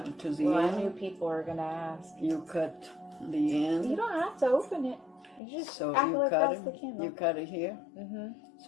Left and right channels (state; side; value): drops out; right; at 5.4 s